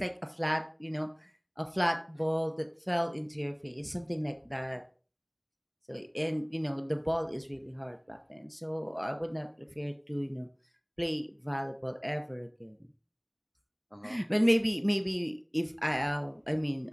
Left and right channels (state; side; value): identical; both; correlation 1.00